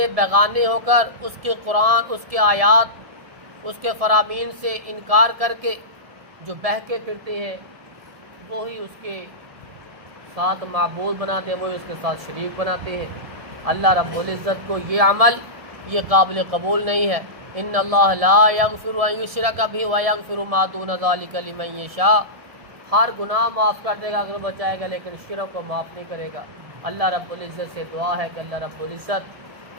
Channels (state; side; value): late; left; 1.7 ms